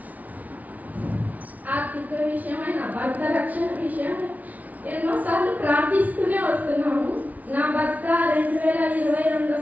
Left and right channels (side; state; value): left; late; 0.073 ms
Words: నా భర్త రక్షణ విషయమై ఎన్నోసార్లు ప్రార్థిస్తూనే వస్తున్నాము. నా భర్త 2022